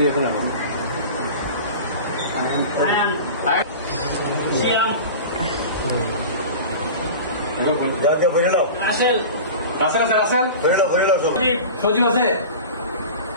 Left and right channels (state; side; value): inverted; both; correlation -0.34